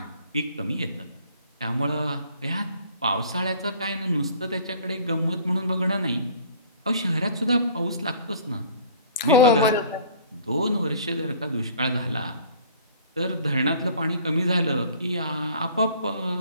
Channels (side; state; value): both; inverted; correlation -0.50